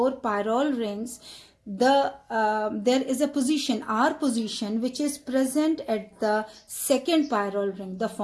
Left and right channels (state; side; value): identical; both; correlation 1.00